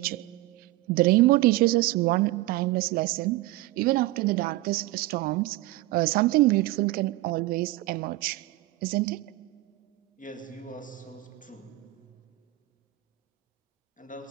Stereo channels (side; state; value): left; quieter; 18.3 dB